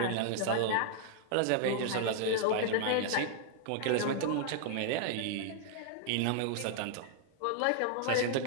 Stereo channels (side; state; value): both; different; correlation -0.01